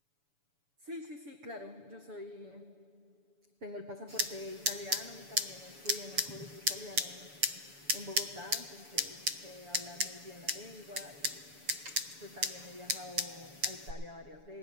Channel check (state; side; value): late; left; 7.0 ms